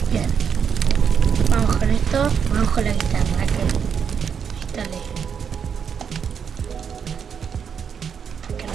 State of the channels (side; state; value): left; quieter; 7.1 dB